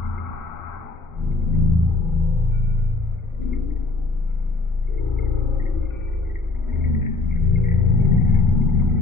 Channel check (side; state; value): right; quieter; 3.4 dB